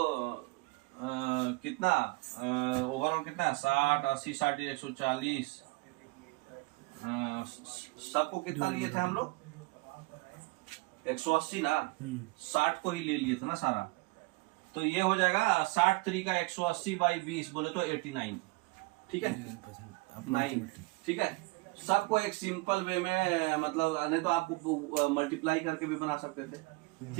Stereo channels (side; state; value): left; quieter; 24.8 dB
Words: कितना ओवरऑल कितना 60 80 60 140, सबको कितना लिए थे हम लोग 180 ना। 60 को ही ले लिए थे ना सारा। तो ये हो जाएगा 60 3 का 180 / 20 बोले तो 89, ठीक है 9, ठीक है। सबको एक सिंपल वे में, मतलब नहीं तो आपको मल्टीप्लाई करके भी बना सकते थे,